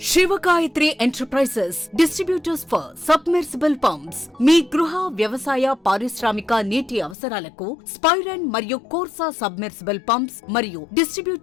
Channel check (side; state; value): right; drops out; at 7.2 s